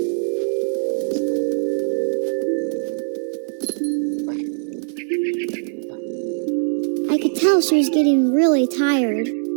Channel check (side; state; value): left; silent; digital silence